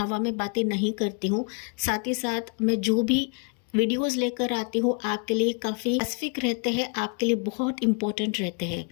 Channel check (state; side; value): quieter; right; 37.1 dB